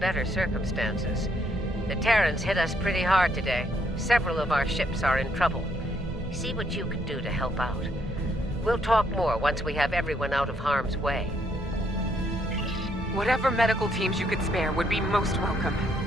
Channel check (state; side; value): normal; both; correlation 0.72